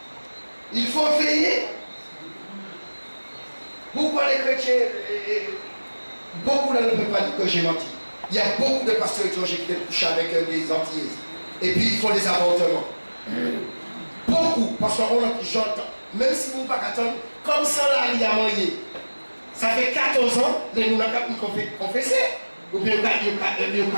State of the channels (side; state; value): both; inverted; correlation -1.00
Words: Il faut veiller. Pourquoi les chrétiens, beaucoup ne peuvent pas dire que j'ai menti. Il y a beaucoup de pasteurs étrangers qui viennent coucher avec des Antillaises. Et puis ils font des avortements. Beaucoup, parce qu'on j'entends, même si vous ne pouvez pas attendre, comme ça là, il y a moyen. Ça fait 14 ans, les gens ont confessé. Ou bien ils ont